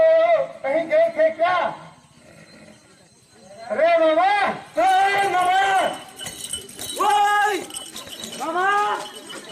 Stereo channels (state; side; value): identical; both; correlation 1.00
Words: कहीं गए थे क्या? अरे मामा, मामा,